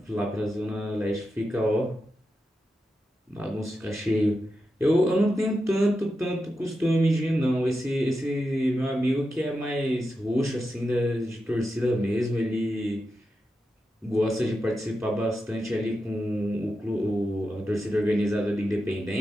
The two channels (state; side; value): normal; both; correlation 0.89